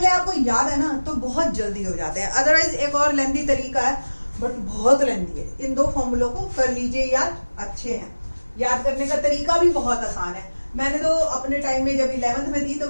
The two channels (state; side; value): inverted; both; correlation -1.00